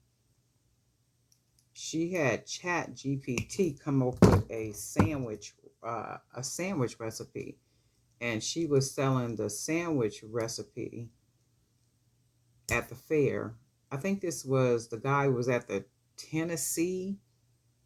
she had Chat GPT come up with a sandwich recipe, and she was selling the sandwich recipe at the fair. I think the guy was at the Tennessee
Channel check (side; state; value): both; identical; correlation 1.00